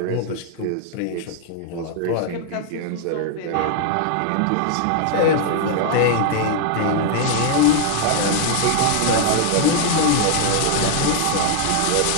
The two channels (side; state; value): both; different; correlation 0.00